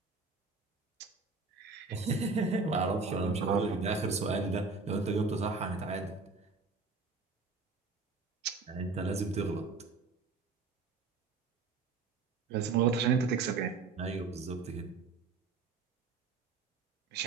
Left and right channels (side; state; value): left; quieter; 4.4 dB